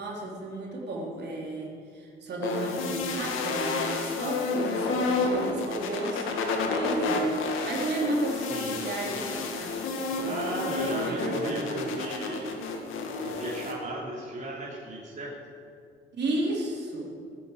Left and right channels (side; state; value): both; normal; correlation 0.33